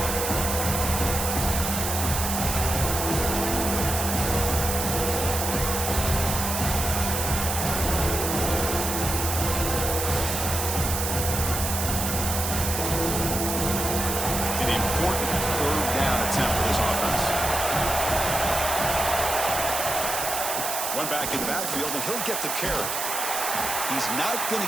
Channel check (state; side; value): noise; right; hiss, 2 dB below the sound